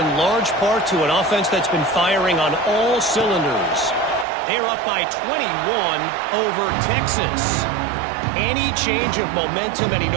large part to an offense that's been firing on all cylinders. They're up by 21 over Texas. Any change of momentum, any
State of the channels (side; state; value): left; drops out; at 4.2 s